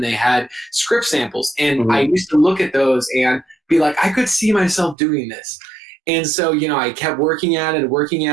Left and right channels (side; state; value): left; drops out; at 5.0 s